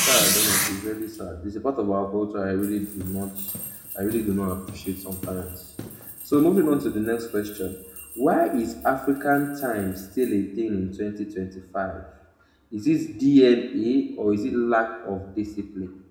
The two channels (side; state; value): both; identical; correlation 1.00